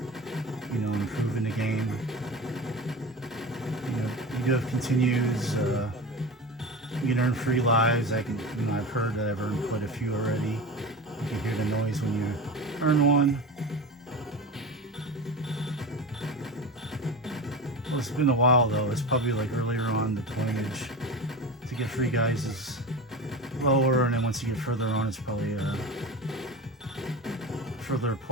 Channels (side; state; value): both; normal; correlation 0.28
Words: you know, improve in the game, you know, you do have continues, you can earn free lives. I can, you know, I've heard that I've earned quite a few already. You can hear the noise when you earn one. Well, it's been a while though. It's probably like earlier on the pointage to get free guys is lower, and then once you get further on, it's probably further